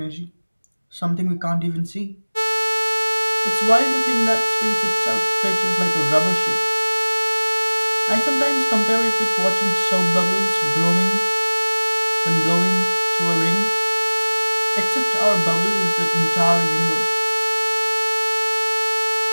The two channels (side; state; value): both; inverted; correlation -1.00